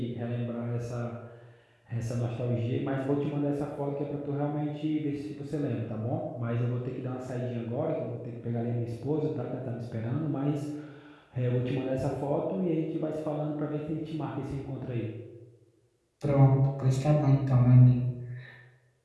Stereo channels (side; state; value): both; identical; correlation 1.00